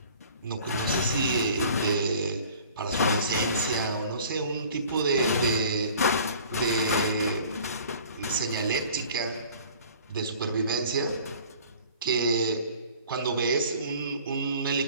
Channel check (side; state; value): both; inverted; correlation -0.48